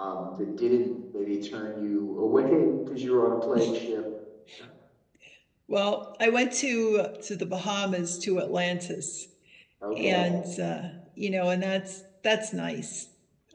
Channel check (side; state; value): both; identical; correlation 1.00